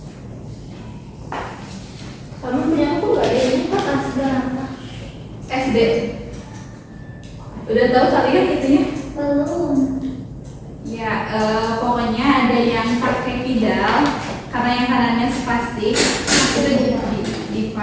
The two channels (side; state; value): both; identical; correlation 1.00